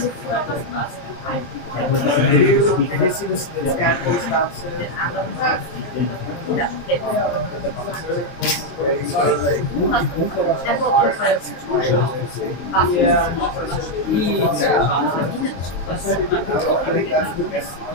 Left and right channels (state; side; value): late; right; 22 ms